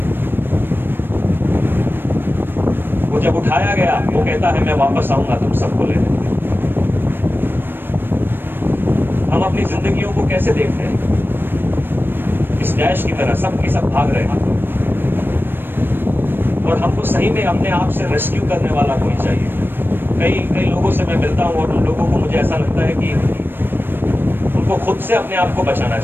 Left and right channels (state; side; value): late; left; 0.097 ms